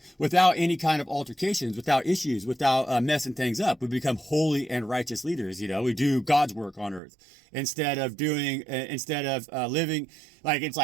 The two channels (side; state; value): left; drops out; at 7.0 s